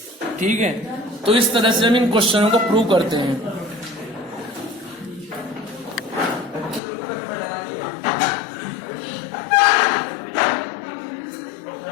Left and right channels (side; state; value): right; drops out; at 6.8 s